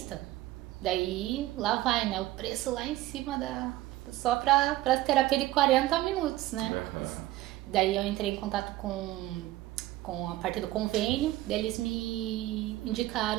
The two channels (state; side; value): quieter; left; 16.5 dB